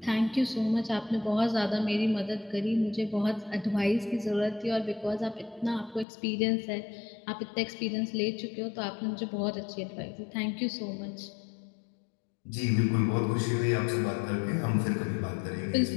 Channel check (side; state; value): right; drops out; at 6.1 s